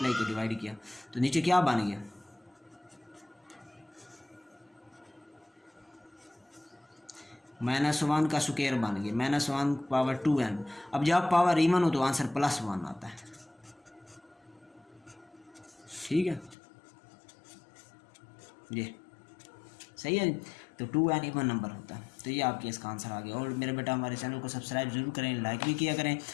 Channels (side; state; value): right; drops out; at 16.6 s